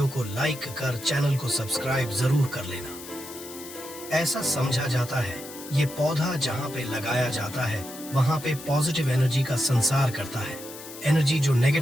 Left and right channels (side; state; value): left; noise; hiss, 14 dB below the sound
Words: को लाइक कर चैनल को सब्सक्राइब जरूर कर लेना। ऐसा समझा जाता है ये पौधा जहाँ पे लगाया जाता है वहाँ पे पॉजिटिव एनर्जी का संसार करता है। एनर्जी जो